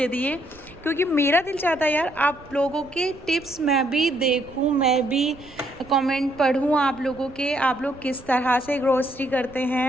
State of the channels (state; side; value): noise; right; rumble, 22 dB below the sound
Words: दिए, क्योंकि मेरा दिल चाहता है यार आप लोगों के टिप्स मैं भी देखूं, मैं भी कमेंट पढूं आप लोगों के, आप लोग किस तरह से ग्रोसरी करते